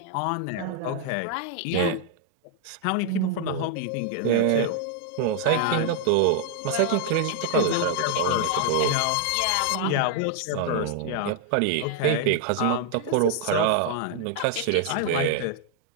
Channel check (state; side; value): different; both; correlation 0.00